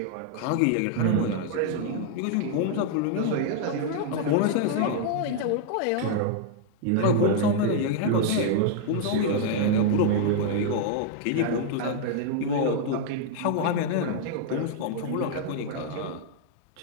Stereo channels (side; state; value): both; different; correlation 0.00